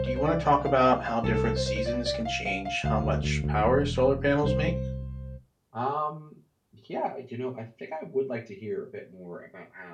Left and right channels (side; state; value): both; identical; correlation 1.00